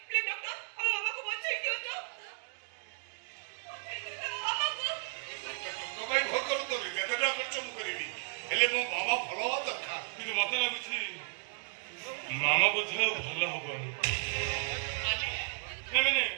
ପ୍ଲିଜ ଡକ୍ଟର ଆମ ମାମାକୁ ବଞ୍ଚେଇ ଦିଅନ୍ତୁ। ଟଙ୍କା ପାଇଁ ଭୟ କରନ୍ତୁନି, ଯେତେ ଟଙ୍କା ଖର୍ଚ୍ଚ ମୁଁ କରିବି, ହେଲେ ମୋ ମାମା ଭଲ ହବା ଦରକାର। କିନ୍ତୁ ମତେ ଲାଗୁଛି ମାମା ବୋଧେ ଆଉ ଭଲ ହବନି। ମାନେ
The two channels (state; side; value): silent; left; 55 dB below the other